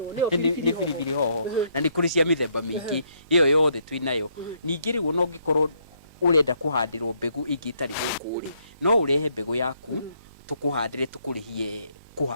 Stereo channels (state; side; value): inverted; both; correlation -0.72